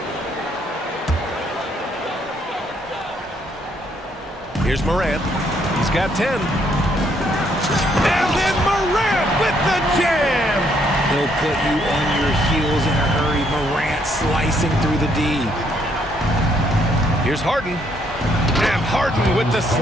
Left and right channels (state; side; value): normal; both; correlation 0.70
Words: Here's Morant. He's got 10. And then Morant with the jam. He'll put you on your heels in a hurry. Morant slicing through the D. Here's Harden. And Harden with the